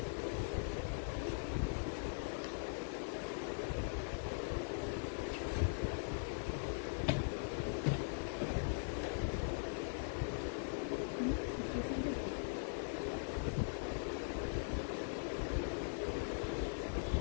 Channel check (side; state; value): right; silent; digital silence